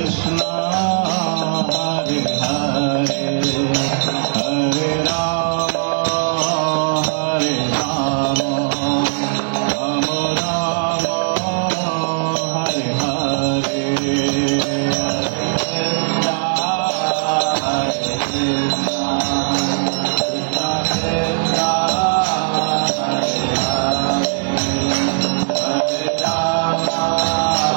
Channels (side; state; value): left; silent; digital silence